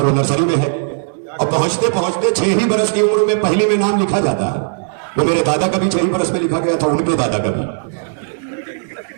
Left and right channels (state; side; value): silent; left; digital silence